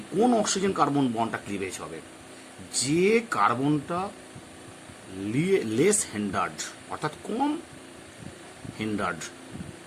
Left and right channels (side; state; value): both; identical; correlation 1.00